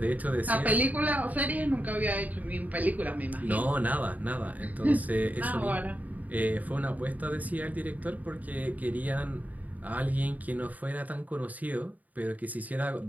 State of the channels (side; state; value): left; late; 0.076 ms